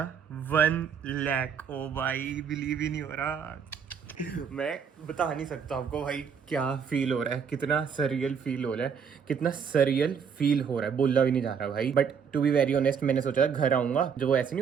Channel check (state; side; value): quieter; left; 6.9 dB